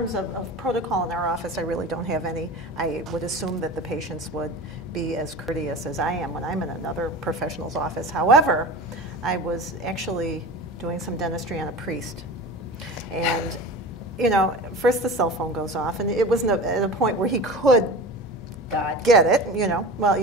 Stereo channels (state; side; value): normal; both; correlation 0.33